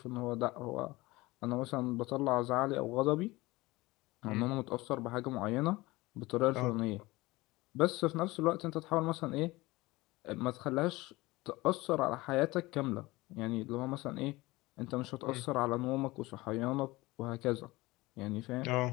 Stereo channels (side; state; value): right; quieter; 20.7 dB